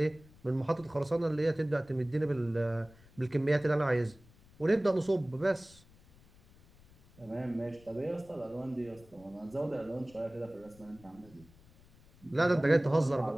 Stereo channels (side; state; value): left; noise; rumble, 25 dB below the sound